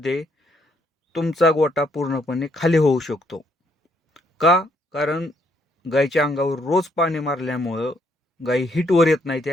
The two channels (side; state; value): both; normal; correlation 0.71